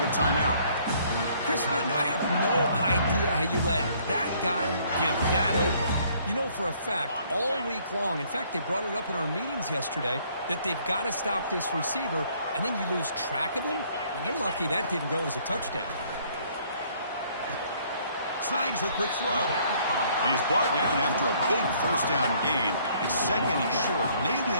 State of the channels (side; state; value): both; inverted; correlation -0.62